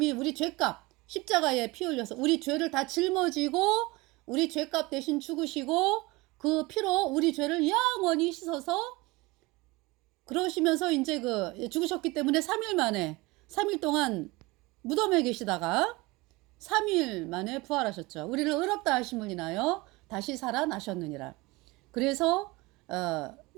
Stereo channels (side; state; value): left; quieter; 23.0 dB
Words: 우리 죄값 십자가에 피 흘려서 우리 죄를 다 짊어지고 우리 죄값 대신 죽으시고 그 피로 우리 죄를 영원히 씻어서 그러시면서 이제 죽으셨기 때문에 3일 만에 3일 동안 무덤에 계시다가 3일 만에 부활하셨죠. 우리를 의롭다 하심을 인하여 다시 살아나셨느니라. 그래서